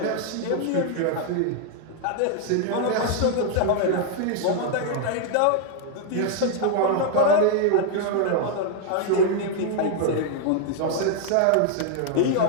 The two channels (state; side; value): different; both; correlation 0.00